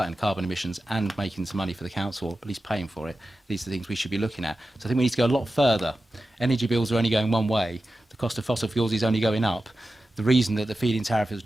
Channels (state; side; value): normal; both; correlation 0.93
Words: carbon emissions and making some money for the council, or at least paying for it. These are the things we should be looking at. So I think we need to go a lot further. Energy bills are only going one way. The cost of fossil fuels is only going up. The reason that the feed-in tariff has